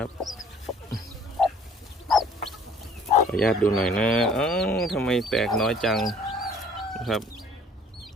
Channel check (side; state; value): both; normal; correlation 0.55